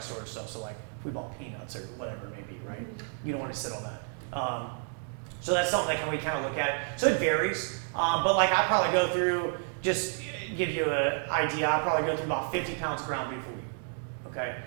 stuff, so like if we bought peanuts or whatever it may be, right? You don't want to sit on that. So that's something that we kind of look at it. So it varies, but like I probably go through, just give you an idea, I probably go through about 50 pounds of ground beef a week, okay?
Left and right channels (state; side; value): silent; left; 57 dB below the other